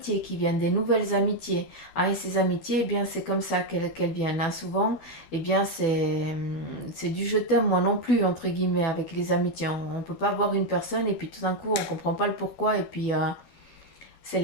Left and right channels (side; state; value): right; late; 12 ms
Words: qui viennent, des nouvelles amitiés. Hein, et ces amitiés, eh bien, c'est comme ça qu'elles viennent. Hein. Souvent, eh bien, c'est du je t'aime, moi non plus, entre guillemets, avec les amitiés. On ne peut pas voir une personne et puis tout d'un coup, on ne comprend pas le pourquoi et puis c'est